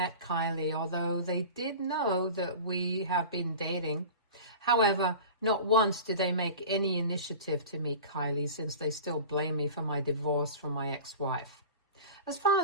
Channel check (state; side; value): inverted; both; correlation -0.35